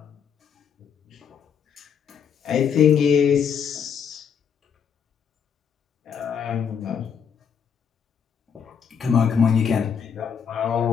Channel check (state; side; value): quieter; right; 7.3 dB